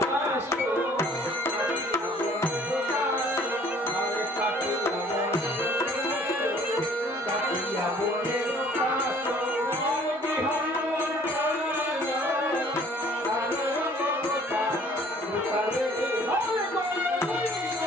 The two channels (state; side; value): normal; both; correlation 0.56